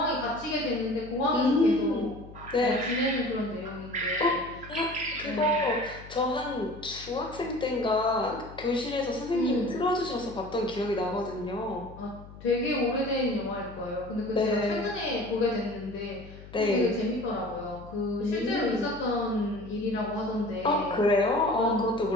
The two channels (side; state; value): left; noise; hum, 17 dB below the sound